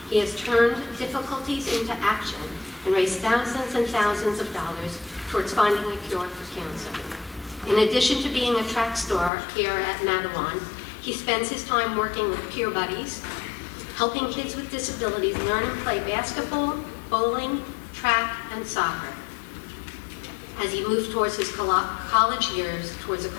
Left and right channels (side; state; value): right; drops out; at 9.3 s